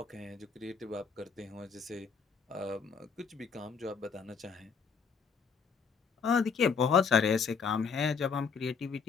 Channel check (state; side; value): quieter; right; 5.6 dB